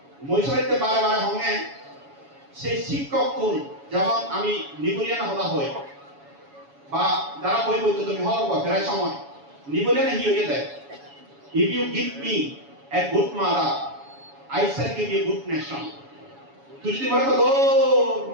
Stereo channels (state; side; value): late; left; 7.1 ms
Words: মই সাইতে বারে বারে হঙে সেই শিক্ষক কোন যেমন আমি নিবলিয়ান হতা হই বা যারা বই বইতো তুমি হওয়ার প্রায় সময় নিবলিয়ান হি হয়ে দেয় if you give me a good mother I shall give you a good nation তুই যদি বলে তো